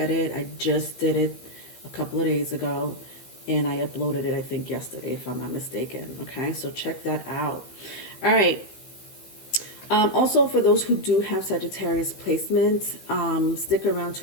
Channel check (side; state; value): right; late; 15 ms